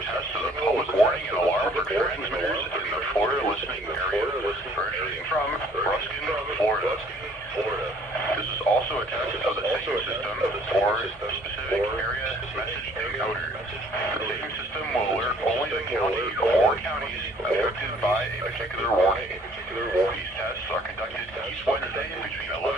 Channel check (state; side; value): normal; both; correlation 0.58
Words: test of the public warning and alarm for transmitters in the Florida listening area, originating from Ruskin, Florida. This is also a test of the same system for specific area message encoder. The same system will alert only the county or counties affected by a particular warning. These tests are conducted each Wednesday between